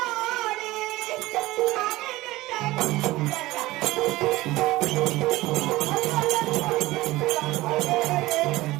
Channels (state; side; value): quieter; left; 18.4 dB